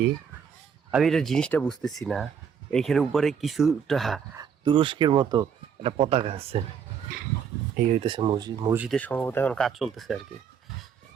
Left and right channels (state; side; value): quieter; left; 7.2 dB